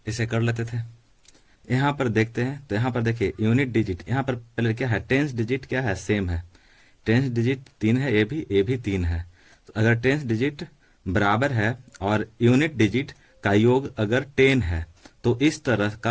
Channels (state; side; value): identical; both; correlation 1.00